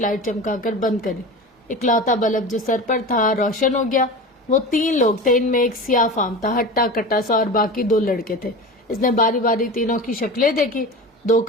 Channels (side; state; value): both; normal; correlation 0.30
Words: چمکا کر بند کری، اکلوتا بلب جو سر پر تھا روشن ہو گیا۔ وہ 3 لوگ تھے، ان میں ایک سیاہ فام تھا، ہٹا کٹا سا، اور باقی 2 لڑکے تھے۔ اس نے باری باری تینوں کی شکلیں دیکھی، 2